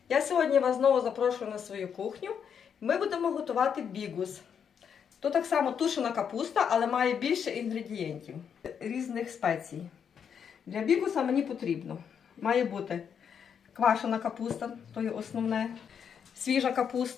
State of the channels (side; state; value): right; quieter; 7.5 dB